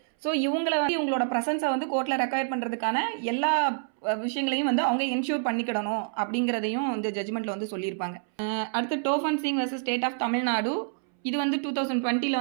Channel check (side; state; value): left; silent; 60 dB below the other